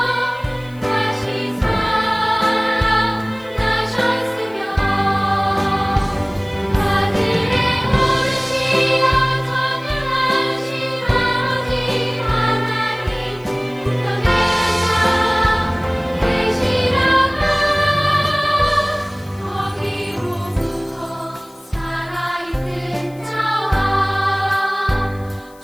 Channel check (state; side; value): noise; left; hiss, 27 dB below the sound